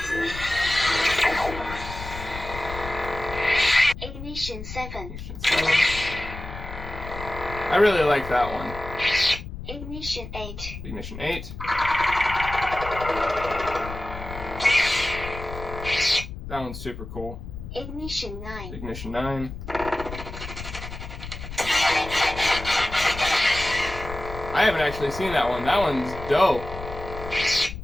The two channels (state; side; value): noise; left; rumble, 10 dB below the sound